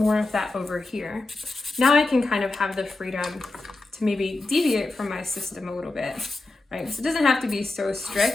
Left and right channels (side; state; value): right; quieter; 3.1 dB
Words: of that over here. Now I can kind of have the freedom to maybe deviate from my system a little bit, right? So it doesn't have to be so